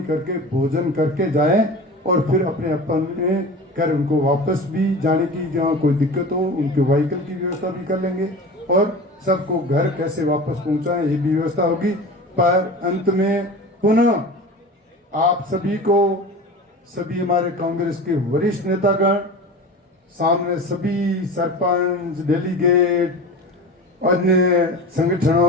करके भोजन करके जाएं और फिर अपने अपने घर उनको वापस भी जाने की जहाँ कोई दिक्कत हो उनके व्हीकल की व्यवस्था भी कर लेंगे और सबको घर कैसे वापस पहुंचाएं ये भी व्यवस्था होगी। पर अंत में पुनः आप सभी को, सभी हमारे कांग्रेस के वरिष्ठ नेतागण सामने सभी सरपंच, डेलीगेट, अन्य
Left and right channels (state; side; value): normal; both; correlation 0.33